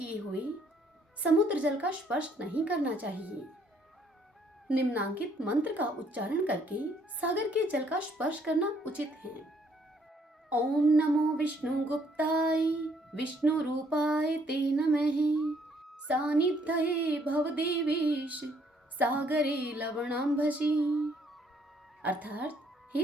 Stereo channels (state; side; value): normal; both; correlation 0.66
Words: हुए समुद्र जल का स्पर्श नहीं करना चाहिए। निम्नांकित मंत्र का उच्चारण करके सागर के जल का स्पर्श करना उचित है। ओम नमो विष्णु गुप्ताय विष्णु रूपाय ते नमः। सानिध्यये भवदेवेश सागरे लवणांभसी। अर्थात